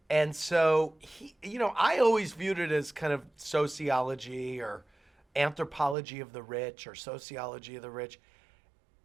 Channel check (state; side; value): drops out; left; at 6.0 s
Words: And so, I always viewed it as kind of sociology or anthropology of the rich or sociology of the rich.